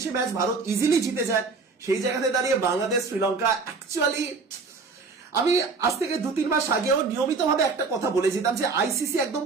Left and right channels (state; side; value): quieter; left; 4.4 dB